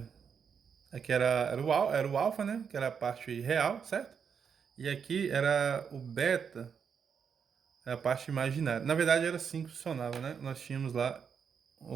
Aqui era o alfa, né? Que era a parte real, certo? E aqui era o beta, a parte imaginária. Na verdade, era assim que funcionava, né? Nós tínhamos lá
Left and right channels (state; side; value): quieter; left; 6.8 dB